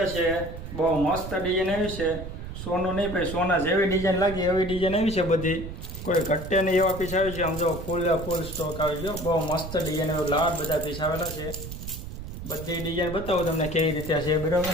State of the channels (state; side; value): noise; right; rumble, 9 dB below the sound